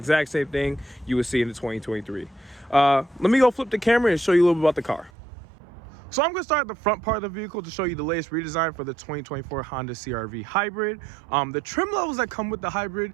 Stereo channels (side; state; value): left; drops out; at 5.1 s